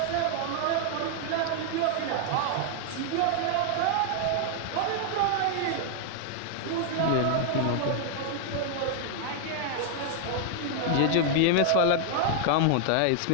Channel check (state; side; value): different; both; correlation 0.00